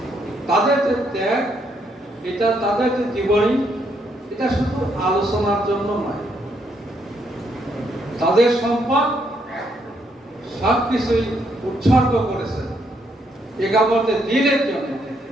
তাদের যে ত্যাগ, এটা তাদের যে জীবনী, এটা শুধু আলোচনার জন্য নয়, তাদের সম্পদ সবকিছুই উৎসর্গ করেছেন একামতে দ্বীনের জন্য।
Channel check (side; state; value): both; normal; correlation 0.74